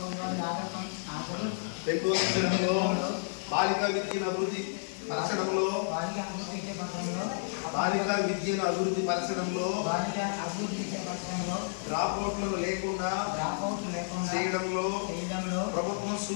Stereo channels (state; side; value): silent; right; 57 dB below the other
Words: బాలికా విద్యను అభివృద్ధి పరచడంలో డ్రాప్అవుట్లను లేకుండా చేయడంలో ప్రభుత్వం